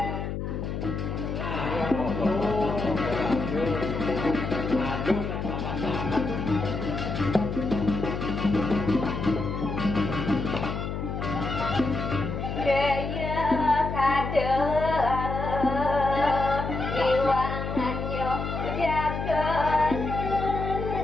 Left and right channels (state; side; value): noise; left; hum, 4 dB below the sound